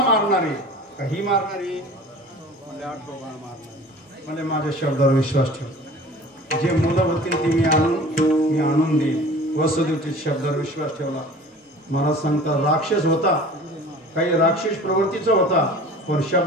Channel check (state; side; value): normal; both; correlation 0.43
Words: मारणारे काही मारणारे म्हणजे 8वं बाळ मारणारे म्हणजे माझ्या शब्दावर विश्वास ठेव. जे मुलं होतील ती मी आणून देईन. वसुदेवच्या शब्दावर विश्वास ठेवला. मला सांगता राक्षस होता. काही राक्षस प्रवृत्तीचा होता पण